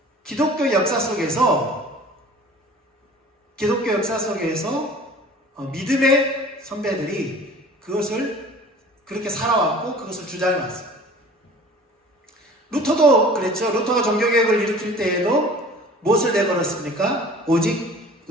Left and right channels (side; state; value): both; normal; correlation 0.45